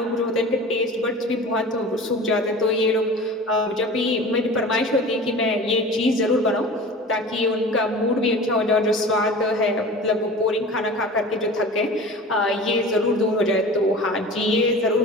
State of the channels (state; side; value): normal; both; correlation 0.37